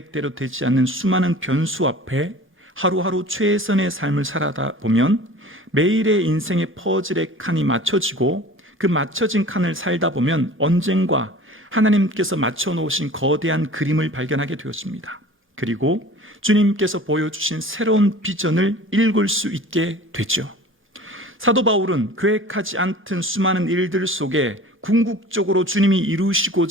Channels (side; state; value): both; normal; correlation 0.42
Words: 되지 않는 수많은 변수 앞에 하루하루 최선의 삶을 살아다 보면 매일의 인생의 퍼즐의 칸이 맞춰지고 그 맞춰진 칸을 살다 보면 언젠가 하나님께서 맞춰놓으신 거대한 그림을 발견하게 되었습니다. 그리고 주님께서 보여주신 새로운 비전을 읽을 수 있게 되죠. 사도 바울은 계획하지 않던 수많은 일들 속에 궁극적으로 주님이